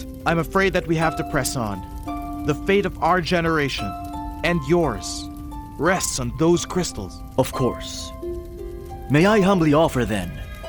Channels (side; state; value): both; identical; correlation 1.00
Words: I'm afraid that we have to press on. The fate of our generation, and yours, rests on those crystals. Of course. May I humbly offer, then,